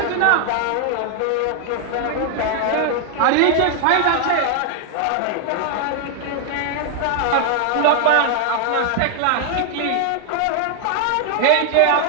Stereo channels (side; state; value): both; different; correlation 0.00